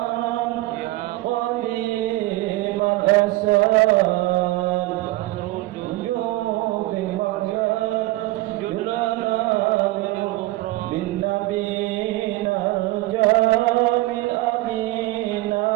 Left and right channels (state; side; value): quieter; left; 18.9 dB